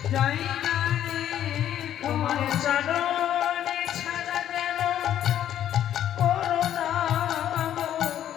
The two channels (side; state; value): right; quieter; 11.0 dB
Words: জায়গা রেখো। তোমার চরণে ছাড়া যেন করুণা